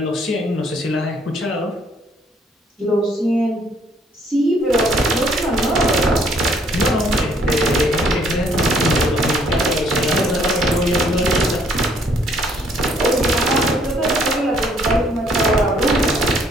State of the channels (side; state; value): both; normal; correlation 0.64